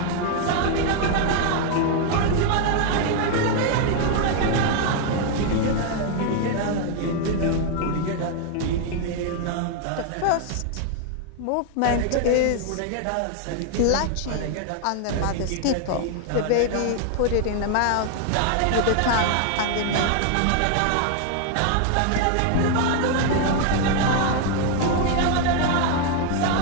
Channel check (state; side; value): different; both; correlation 0.00